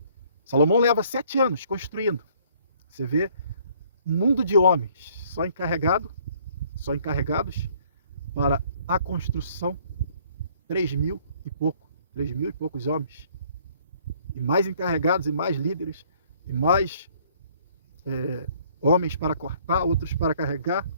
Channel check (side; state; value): both; inverted; correlation -0.60